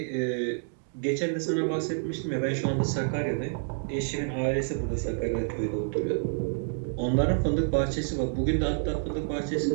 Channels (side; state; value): left; silent; digital silence